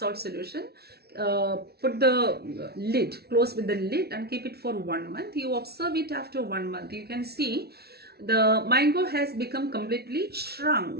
solution. Put the lid, close with the lid, and keep it for 1 month. You observe it after 1 month. You can see the mango has become completely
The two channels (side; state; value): left; late; 0.46 ms